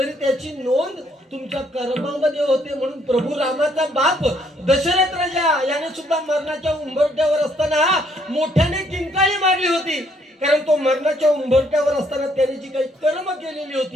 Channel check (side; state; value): both; normal; correlation 0.68